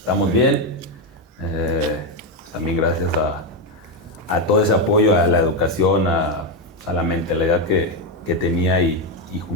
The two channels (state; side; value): normal; both; correlation 0.08